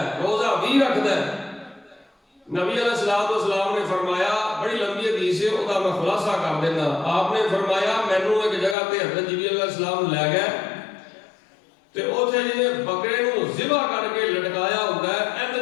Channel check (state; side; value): drops out; right; at 8.8 s